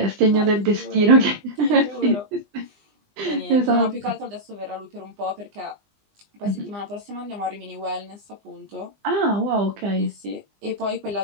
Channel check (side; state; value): left; late; 20 ms